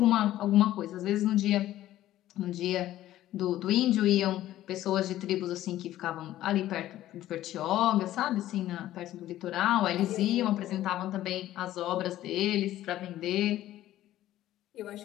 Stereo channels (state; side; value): quieter; right; 13.9 dB